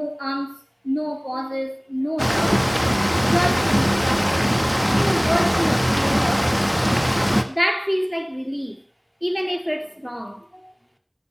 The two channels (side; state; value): both; identical; correlation 1.00